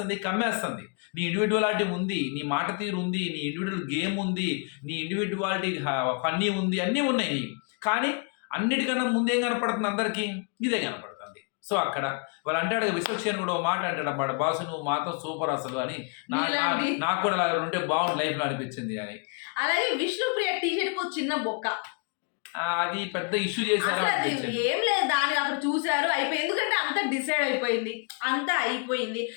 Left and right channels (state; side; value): quieter; right; 35.6 dB